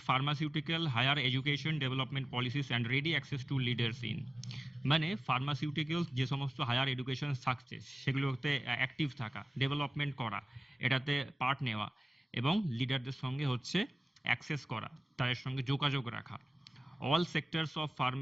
pharmaceutical higher education development policies and ready access to leaders in, মানে ফার্মাসিউটিক্যালস যে সমস্ত হায়ার এডুকেশন থাকছে সেগুলোতে অ্যাক্টিভ থাকা, ডেভেলপমেন্ট করা, এটাতে পার্ট নেওয়া এবং লিডারদের সঙ্গে হচ্ছে অ্যাক্সেস করা, তাদের সঙ্গে যোগাযোগ রাখা। All sectors of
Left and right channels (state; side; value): normal; both; correlation 0.97